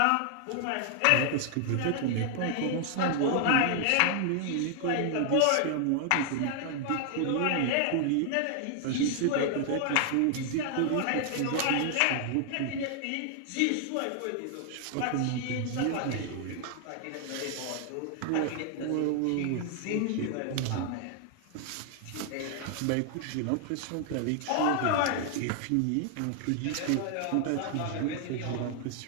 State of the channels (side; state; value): both; different; correlation 0.00